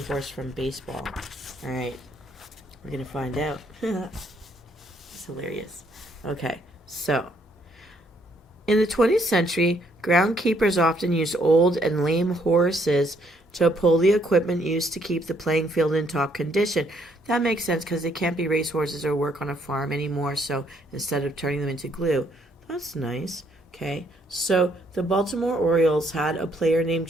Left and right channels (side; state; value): both; normal; correlation 0.69